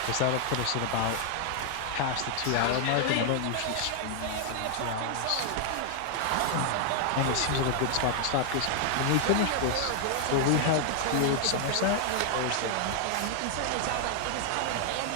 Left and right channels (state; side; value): different; both; correlation 0.00